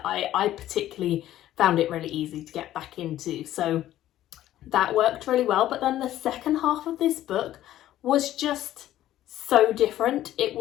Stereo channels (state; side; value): quieter; right; 13.3 dB